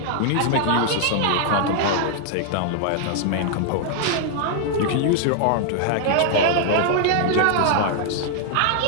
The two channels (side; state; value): both; different; correlation -0.01